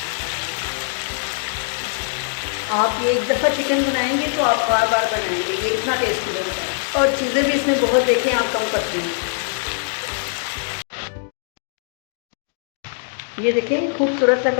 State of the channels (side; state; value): right; silent; digital silence